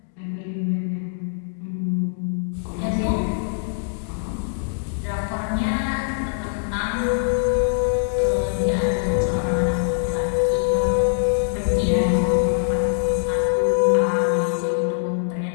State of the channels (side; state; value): right; silent; digital silence